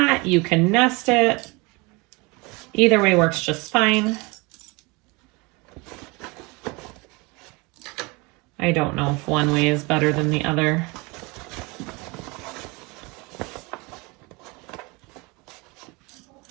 you can nest it. Either way works just fine. I don't know if one way is better than the other.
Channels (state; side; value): quieter; left; 26.4 dB